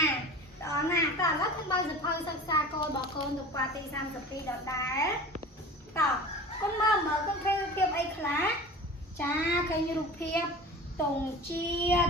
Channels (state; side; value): normal; both; correlation 0.38